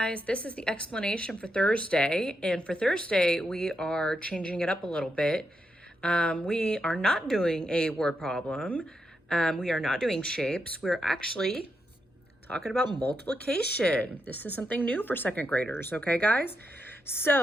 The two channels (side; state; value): both; normal; correlation 0.84